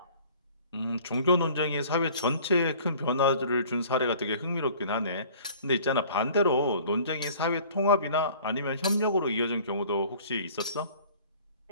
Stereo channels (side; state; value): both; inverted; correlation -0.49